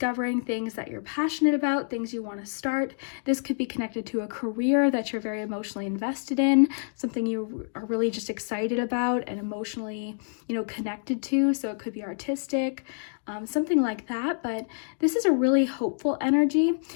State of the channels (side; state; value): right; silent; digital silence